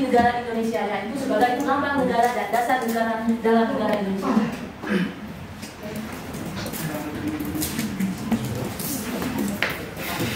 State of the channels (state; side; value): identical; both; correlation 1.00